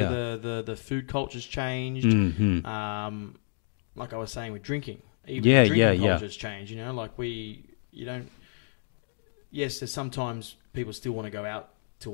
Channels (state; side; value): silent; right; digital silence